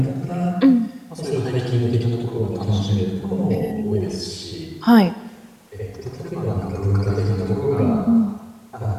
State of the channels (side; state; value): both; identical; correlation 1.00